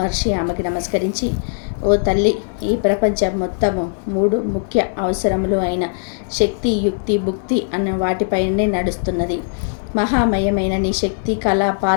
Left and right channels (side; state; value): right; silent; 66 dB below the other